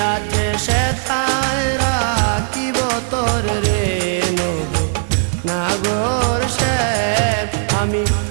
আছে সেথায় রাখিব তোর রে নব নাগর শ্যাম আমি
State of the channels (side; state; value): left; silent; 63 dB below the other